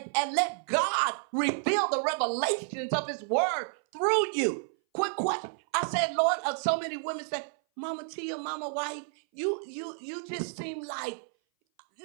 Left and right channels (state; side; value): silent; left; 58 dB below the other